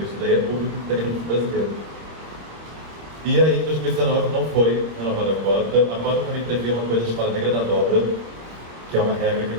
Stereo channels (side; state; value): left; late; 25 ms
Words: isso daí é público e técnico brasileiro. E aí, em 2019, não foi a nova cota. A cota também previa uma coisa chamada regra da dobra, que é uma regra que